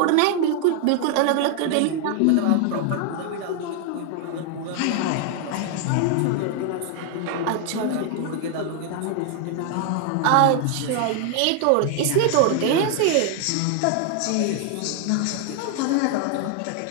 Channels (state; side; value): different; both; correlation 0.00